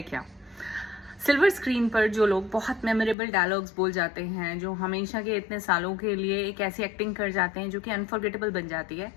क्या। सिल्वर स्क्रीन पर जो लोग बहुत मेमोरेबल डायलॉग्स बोल जाते हैं, जो हमेशा के इतने सालों के लिए एक ऐसी एक्टिंग कर जाते हैं जो कि अनफॉरगेटेबल बन जाती है,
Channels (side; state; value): right; drops out; at 3.2 s